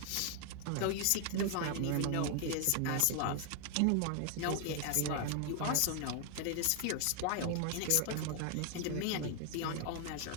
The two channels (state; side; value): different; both; correlation 0.00